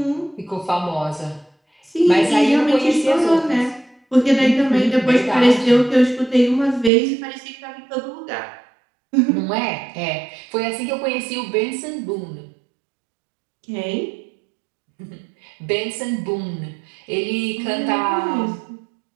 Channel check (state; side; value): drops out; left; at 6.9 s